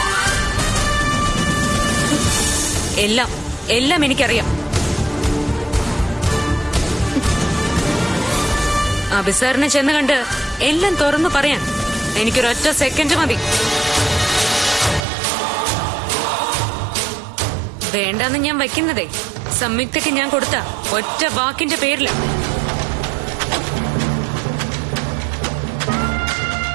എല്ലാം എനിക്കറിയാം. അഭിസാറിനെ ചെന്ന് കണ്ട് എല്ലാം തുറന്നു പറയാൻ എനിക്കൊരൊറ്റ സെക്കൻഡ് മതി. വേണ്ടെന്ന് ഞാൻ വയ്ക്കുന്നതേ സംയുക്തയ്ക്ക് ഞാൻ കൊടുത്ത ഒറ്റ വാക്കിന്റെ പേരില.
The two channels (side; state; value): left; drops out; at 15.1 s